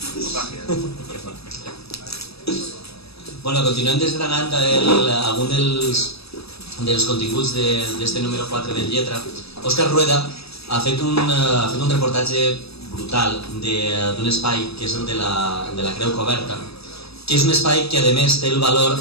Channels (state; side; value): late; right; 0.78 ms